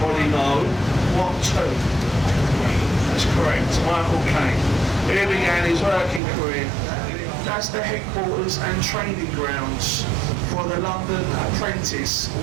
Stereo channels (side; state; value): left; drops out; at 6.2 s